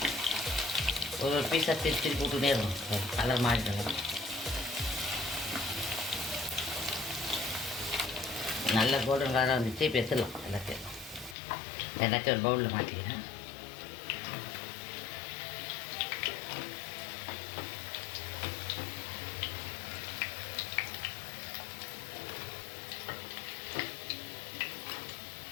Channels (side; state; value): right; drops out; at 11.4 s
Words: ஒரு பீஸாக திருப்பி போட்டுகிட்டே இருக்கும். கலர் மாறிட்டு நல்ல கோல்டன் கலராக வந்துச்சு. இப்போ எடுத்துடலாம். எல்லாத்தையும் ஒரு பவுலில் மாற்றிக்கிறேன்.